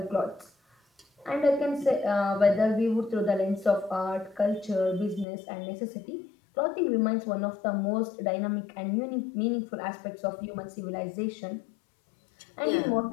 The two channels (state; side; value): drops out; right; at 5.2 s